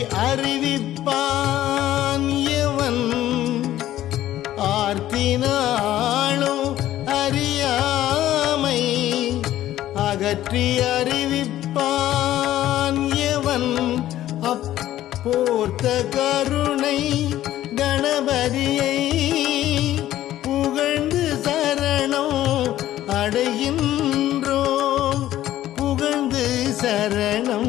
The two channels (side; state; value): right; quieter; 13.4 dB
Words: அறிவிப்பான் எவன் ஆர்த்தினாலும் அறியாமை அகற்றி அறிவிப்பான் எவன் அப்போர்த்த கருணை கணபதியை புகழ்ந்து சரணம் அடைகின்றோம் புகழ்ந்து